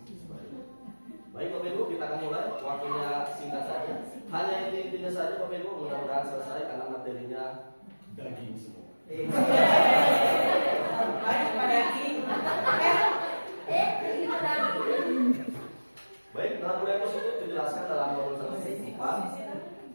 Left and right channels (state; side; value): inverted; both; correlation -1.00